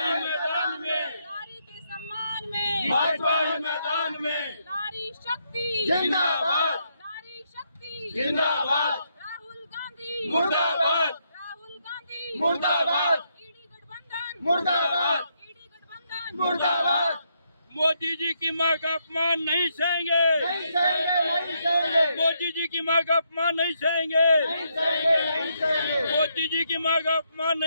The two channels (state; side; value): inverted; both; correlation -0.77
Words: मैदान में, नारी के सम्मान में, भाजपा मैदान में। नारी शक्ति जिंदाबाद, नारी शक्ति जिंदाबाद, राहुल गांधी मुर्दाबाद, राहुल गांधी मुर्दाबाद, ईडी गठबंधन मुर्दाबाद, ईडी गठबंधन मुर्दाबाद। मोदी जी की मां का अपमान नहीं सहेंगे, नहीं सहेंगे, नहीं सहेंगे। मोदी जी की मां का अपमान नहीं सहेंगे, नहीं सहेंगे, नहीं सहेंगे। मोदी जी की मां का अपमान